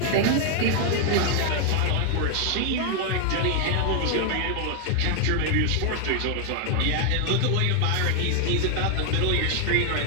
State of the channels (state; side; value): different; both; correlation 0.00